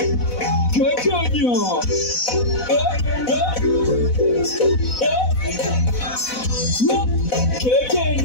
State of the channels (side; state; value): right; late; 4.0 ms